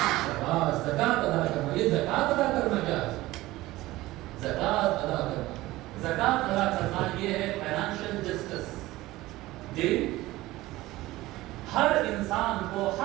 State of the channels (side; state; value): left; quieter; 17.9 dB